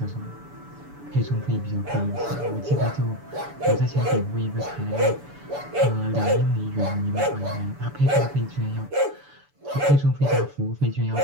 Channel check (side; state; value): left; late; 7.0 ms